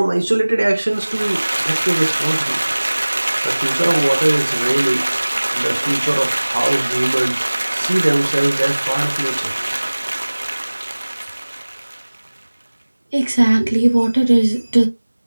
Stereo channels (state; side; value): inverted; both; correlation -1.00